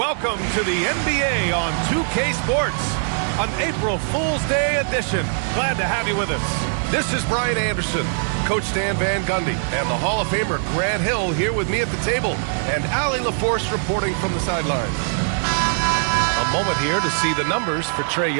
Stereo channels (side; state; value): left; silent; digital silence